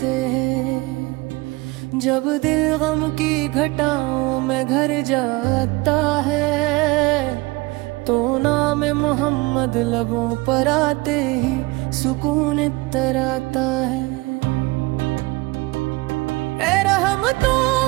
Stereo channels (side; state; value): left; quieter; 23.4 dB